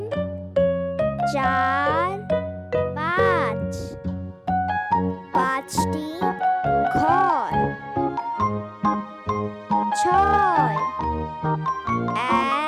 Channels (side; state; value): both; identical; correlation 1.00